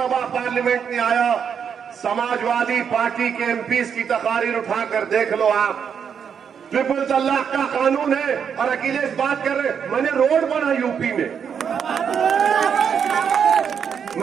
पार्लियामेंट में आया, समाजवादी पार्टी के एमपीज की तकारीर उठाकर देख लो आप। ट्रिपल तलाक का कानून है और अखिलेश बात कर रहे, मैंने रोड बना यूपी में,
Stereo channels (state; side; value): quieter; left; 7.3 dB